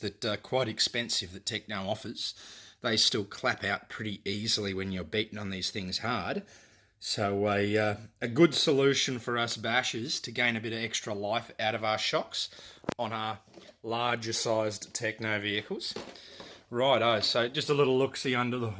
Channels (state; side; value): identical; both; correlation 1.00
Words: are quite expensive that Tekno offers. They still clap out pretty easily when you're beating on these things hard. So a good solution for us bashers to gain a bit of extra life out of our shocks on our larger sized Tekno vehicles. Righto, so just a little look-see under the